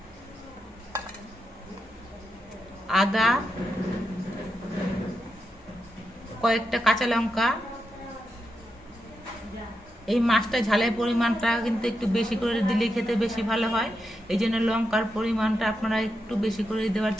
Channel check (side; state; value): both; normal; correlation 0.85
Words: আদা, কয়েকটা কাঁচা লঙ্কা। এই মাছটা ঝালের পরিমাণটা কিন্তু একটু বেশি করে দিলে খেতে বেশি ভালো হয়, এই জন্য লঙ্কার পরিমাণটা আপনারা একটু বেশি করে দেওয়ার